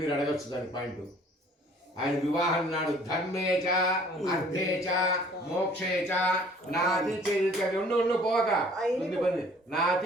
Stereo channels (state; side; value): normal; both; correlation 0.55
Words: అడగచ్చు దాని పాయింట్ ఆయన వివాహం నాడు ధర్మేచ అర్థేచ మోక్షేచ నాతి ఉండు పోక